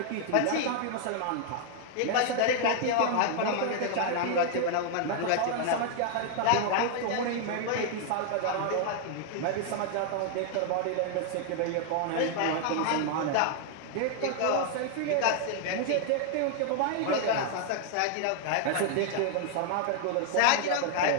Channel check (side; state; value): both; different; correlation 0.00